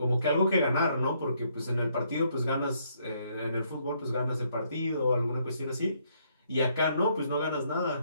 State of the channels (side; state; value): both; inverted; correlation -0.71